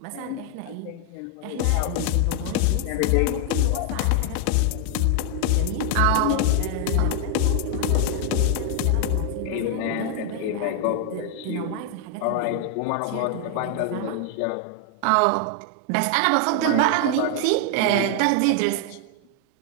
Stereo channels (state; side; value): different; both; correlation 0.00